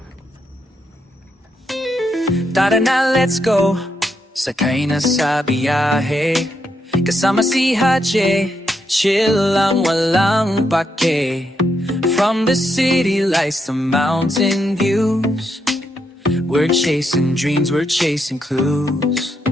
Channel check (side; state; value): both; normal; correlation 0.80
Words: Tara na, let's go. Sakay na sa biyahe. Kasama si Haji. Chill lang, walang pake. From the city lights to mountain views. We're chasing dreams, we're chasing clues.